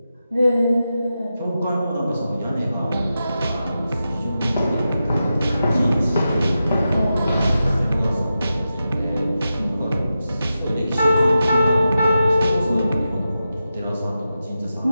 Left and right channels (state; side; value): inverted; both; correlation -0.90